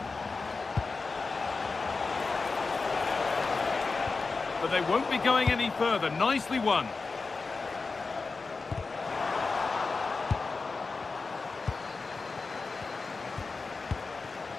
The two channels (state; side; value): quieter; right; 4.1 dB